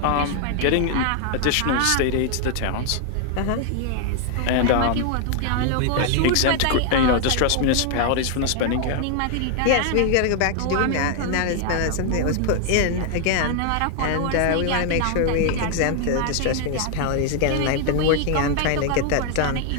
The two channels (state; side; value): different; both; correlation 0.00